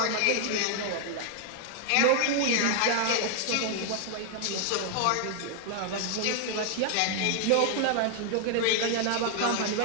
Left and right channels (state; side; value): different; both; correlation 0.00